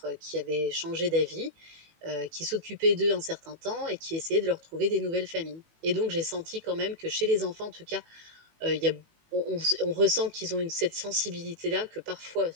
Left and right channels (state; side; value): late; left; 18 ms